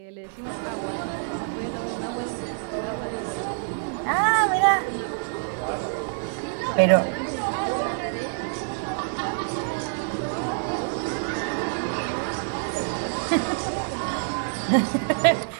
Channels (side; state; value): left; silent; digital silence